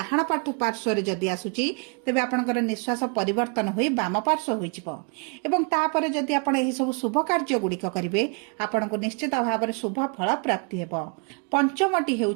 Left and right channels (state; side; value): quieter; left; 35.2 dB